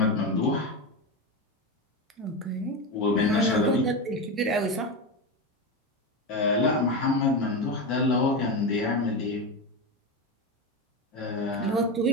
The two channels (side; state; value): both; normal; correlation 0.17